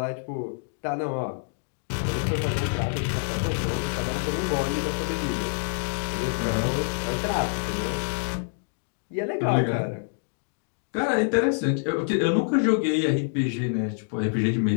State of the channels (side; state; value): right; silent; digital silence